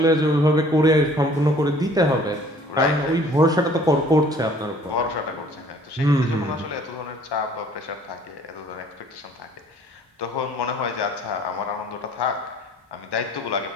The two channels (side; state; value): both; normal; correlation 0.55